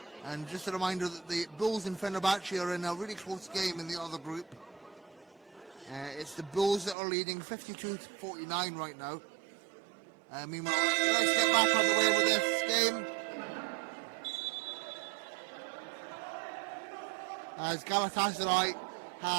And just a reminder that the Bulls and Fenerbahce are in a really close game in the other group. It's the Bulls that are leading 52-49 right now. Meanwhile, let's get back on the way with this game. As Galatasaray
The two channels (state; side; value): drops out; left; at 7.0 s